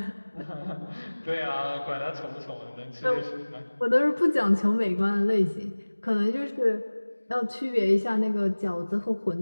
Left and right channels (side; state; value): both; inverted; correlation -1.00